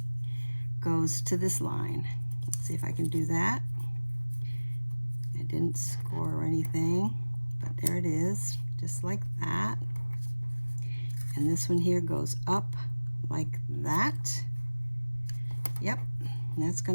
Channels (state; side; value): inverted; both; correlation -1.00